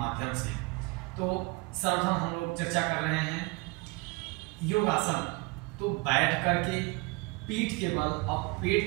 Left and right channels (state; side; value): quieter; left; 26.9 dB